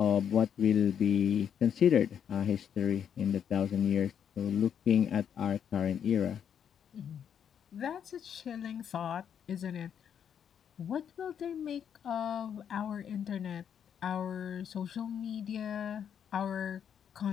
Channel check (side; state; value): right; quieter; 8.4 dB